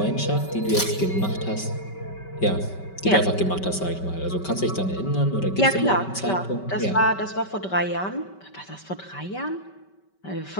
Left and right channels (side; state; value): right; late; 5.2 ms